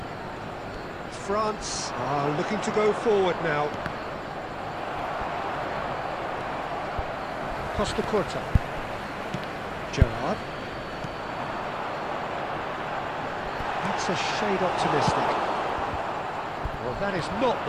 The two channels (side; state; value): both; identical; correlation 1.00